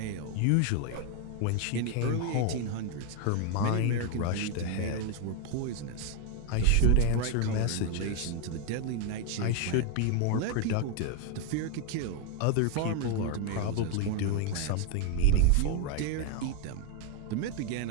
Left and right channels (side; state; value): both; different; correlation 0.01